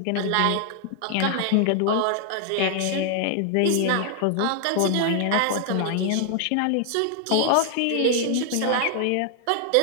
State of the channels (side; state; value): both; different; correlation 0.00